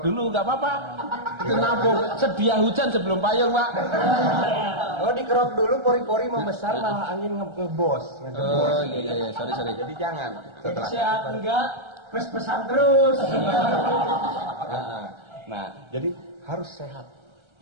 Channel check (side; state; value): left; late; 1.3 ms